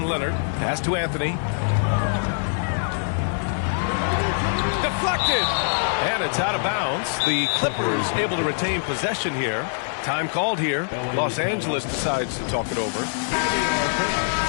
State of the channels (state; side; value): silent; right; 58 dB below the other